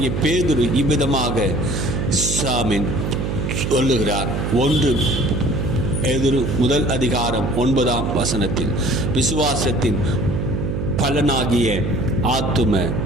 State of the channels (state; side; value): noise; right; hum, 1 dB below the sound